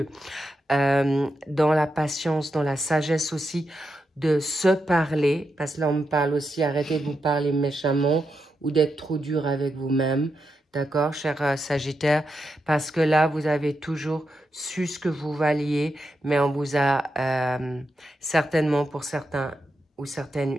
dans la patience, dans la sagesse aussi, de se parler, parce que là on me parle aussi, arrêtez de vous parler méchamment ou d'être trop dur avec vous-même, d'accord, cher Sagittaire, parce que là vous avez toujours su ce que vous valiez, mais on vous a certainement pour certains ou certaines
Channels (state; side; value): normal; both; correlation 0.86